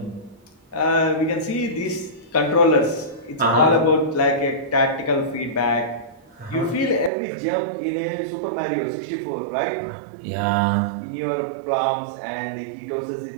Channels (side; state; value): left; drops out; at 7.1 s